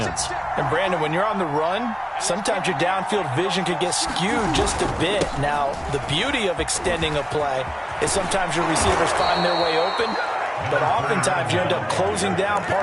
And, Brandon, when you're on the run, sometimes your downfield vision can get skewed just a bit. Now, the beauty of extending a play is sometimes your receivers find their way open, but oftentimes you end up closing down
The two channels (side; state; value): both; identical; correlation 1.00